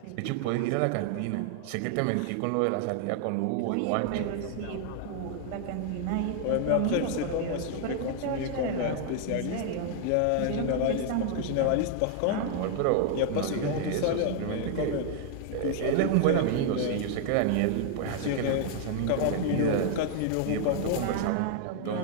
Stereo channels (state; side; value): different; both; correlation 0.00